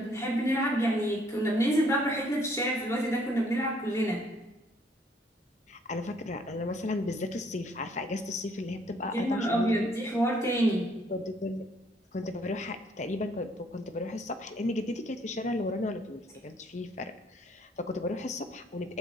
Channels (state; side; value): normal; both; correlation 0.64